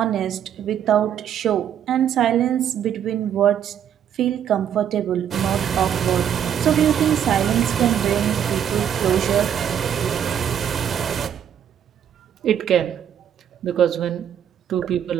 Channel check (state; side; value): quieter; left; 9.3 dB